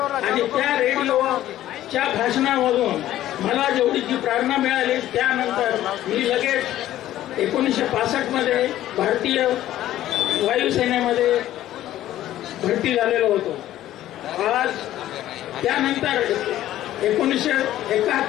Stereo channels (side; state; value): right; quieter; 13.4 dB